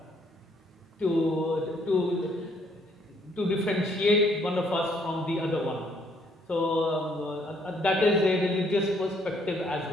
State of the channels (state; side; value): normal; both; correlation 0.67